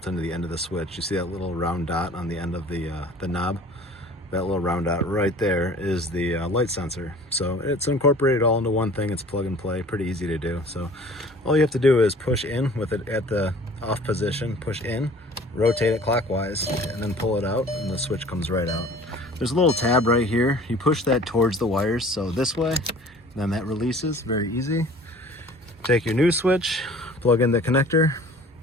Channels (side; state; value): both; normal; correlation 0.48